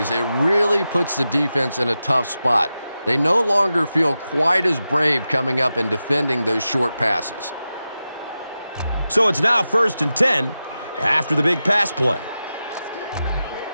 it really puts the defense in a tough spot. They no longer feel quite as brave coming up and defending those short passes. So it's now 1st and 10 after the big pass play.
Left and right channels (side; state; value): both; inverted; correlation -0.92